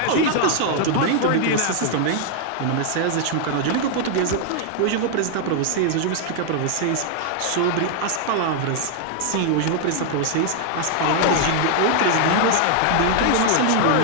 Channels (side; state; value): both; different; correlation 0.00